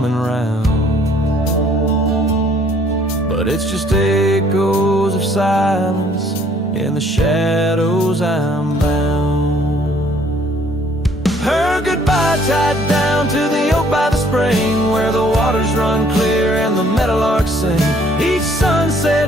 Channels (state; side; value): normal; both; correlation 0.61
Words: round, but it's just echoes of silence. In the shadows I'm bound. Her goodbye tied down to the oak by the spring, where the waters run clear and the meadowlarks sing. Each